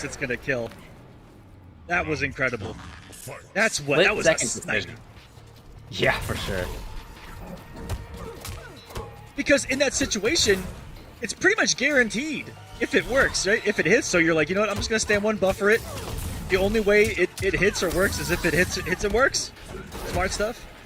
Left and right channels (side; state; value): both; identical; correlation 1.00